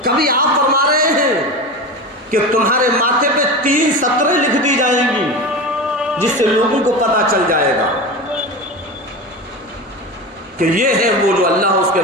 کبھی آپ فرما رہے ہیں کہ تمہارے ماتھے پہ 3 سطریں لکھ دی جائیں گی جس سے لوگوں کو پتہ چل جائے گا کہ یہ ہے وہ جو اللہ اس کے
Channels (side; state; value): both; normal; correlation 0.26